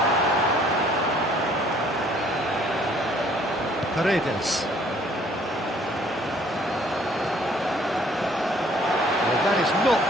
Paredes. Well, that is not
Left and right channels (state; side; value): normal; both; correlation 0.59